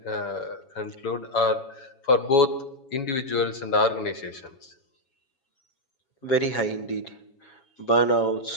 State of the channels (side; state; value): right; late; 7.2 ms